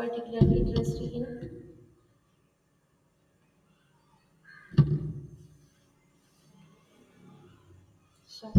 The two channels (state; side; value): identical; both; correlation 1.00